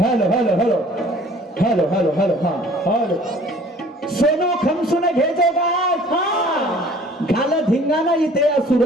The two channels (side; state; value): both; normal; correlation 0.51